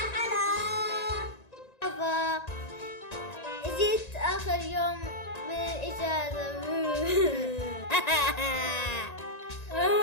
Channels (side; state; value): right; late; 1.9 ms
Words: حلا. جيت آخر يوم من الإجازة.